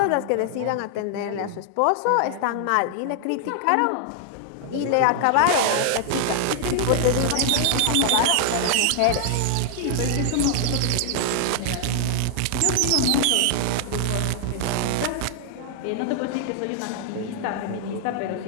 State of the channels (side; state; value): both; different; correlation 0.00